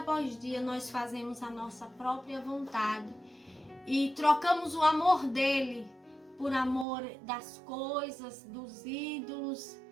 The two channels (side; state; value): left; drops out; at 6.9 s